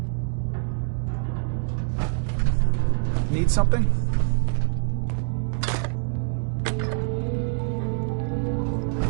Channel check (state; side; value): silent; left; 55 dB below the other